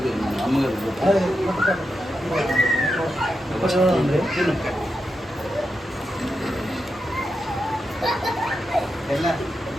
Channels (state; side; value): normal; both; correlation 0.87